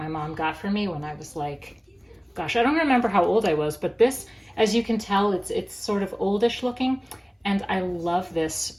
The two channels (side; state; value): both; identical; correlation 1.00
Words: mom got for me when I was like, gosh, I don't remember how old I was, but this, as you can tell, it's sort of oldish looking, and I love this